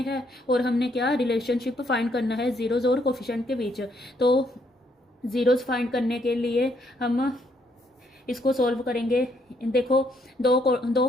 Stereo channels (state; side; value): normal; both; correlation 0.72